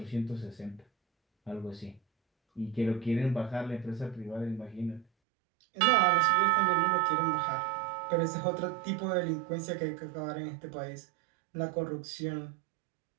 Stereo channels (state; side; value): drops out; left; at 5.1 s